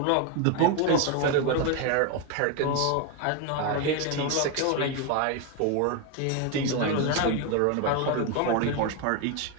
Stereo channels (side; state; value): both; different; correlation 0.02